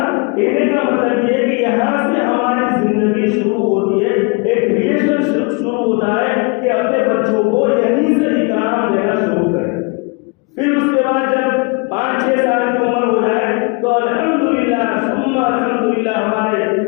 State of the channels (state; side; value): quieter; right; 30.2 dB